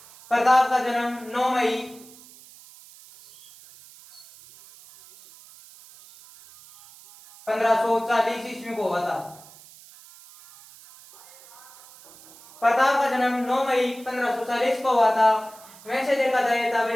प्रताप का जन्म 9 मई 1540 ईस्वी को हुआ था। प्रताप का जन्म 9 मई 1540 को हुआ था। वैसे देखा जाए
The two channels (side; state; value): right; noise; hiss, 22 dB below the sound